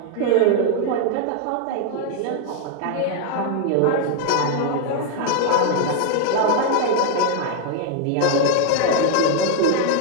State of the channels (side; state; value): both; different; correlation 0.00